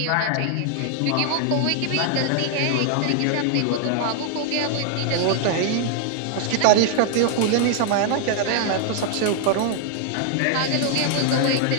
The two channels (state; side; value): different; both; correlation 0.00